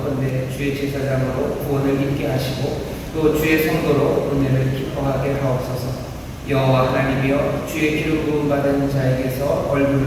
주의 제사장으로 구원을 입게 하시고 또 주의 성도로 은혜를 기뻐하게 하옵소서. 여호와 하나님이여 주의 기름 부음 받은 자에게서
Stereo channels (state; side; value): identical; both; correlation 1.00